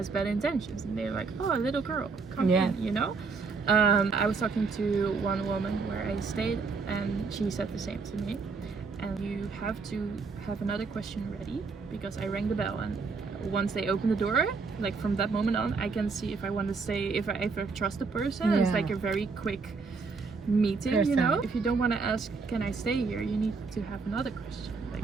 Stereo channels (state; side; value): quieter; left; 4.6 dB